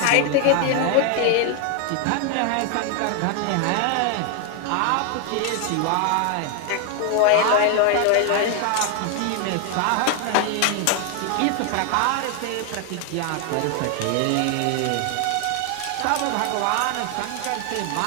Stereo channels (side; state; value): both; different; correlation 0.00